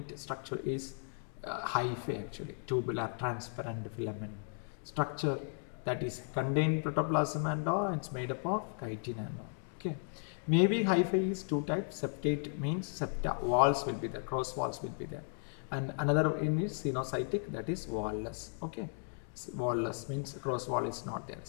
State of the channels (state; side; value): silent; right; 54 dB below the other